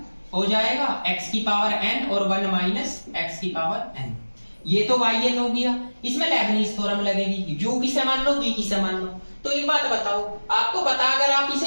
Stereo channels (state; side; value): inverted; both; correlation -1.00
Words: हो जाएगा x की पावर n और 1 माइनस x की पावर n। ये तो yn हो गया। इसमें लेबनीज थ्योरम लगेगी, u किसे मान लो v किसे मान लो। तो एक बात बताओ, आपको पता अगर आप